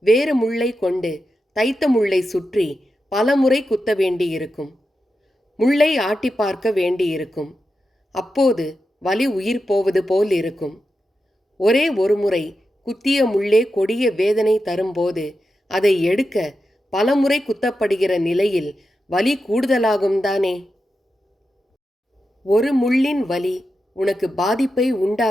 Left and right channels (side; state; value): both; normal; correlation 0.89